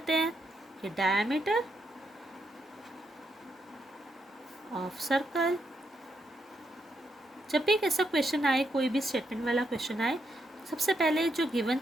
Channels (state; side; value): normal; both; correlation 0.79